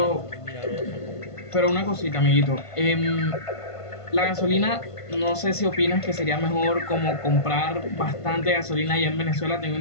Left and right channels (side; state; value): right; late; 1.5 ms